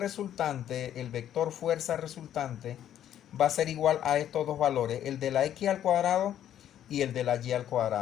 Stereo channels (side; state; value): right; quieter; 10.8 dB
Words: el vector fuerza resultante, va a ser igual a estos dos valores, el de la X al cuadrado y el de la Y al